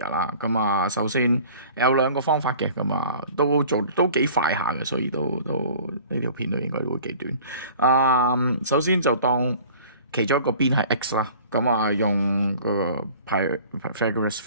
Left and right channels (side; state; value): both; inverted; correlation -0.47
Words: 啦。咁啊首先有兩個方法嘅，咁啊都幾快下嘅，所以都呢條片都應該會幾短。首先就當其中一個邊係 x 啦，咁啊用個 Pythagoras